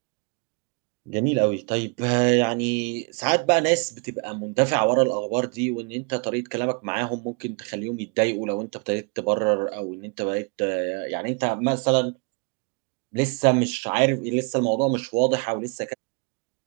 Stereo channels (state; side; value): quieter; left; 34.3 dB